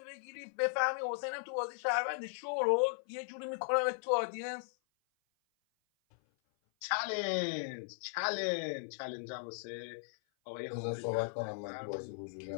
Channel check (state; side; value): silent; right; 53 dB below the other